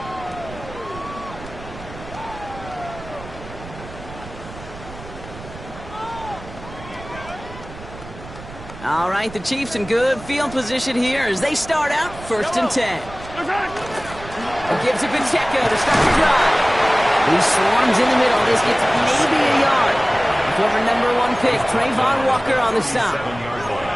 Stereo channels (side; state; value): right; noise; rumble, 15 dB below the sound